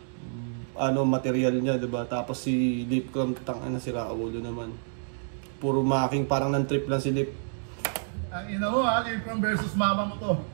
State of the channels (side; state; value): left; silent; digital silence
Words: material niya, 'di ba? Tapos si Lip Cram tangina si Raulo naman. Puro making parang nan-trip lang si Lip. Ang ina mo ha, Lip Cram versus mama mo to.